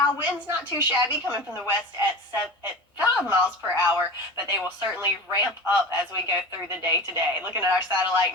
wind's not too shabby, coming from the west at 5 miles per hour, but they will certainly ramp up as we go through the day today. Looking at our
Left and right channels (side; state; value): both; normal; correlation 0.33